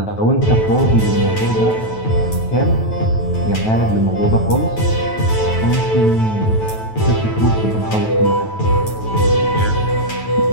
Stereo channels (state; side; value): late; right; 9.2 ms